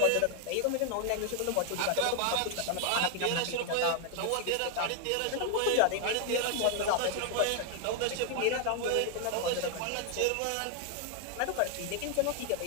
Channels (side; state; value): both; different; correlation 0.00